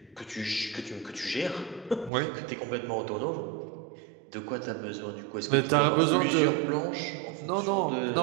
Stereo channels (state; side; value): drops out; left; at 2.1 s